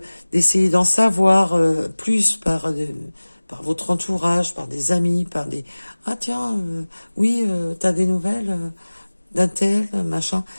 d'en savoir plus par votre entourage, par des amis, par des tiens, oui, t'as des nouvelles d'un tel, machin,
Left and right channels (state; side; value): inverted; both; correlation -1.00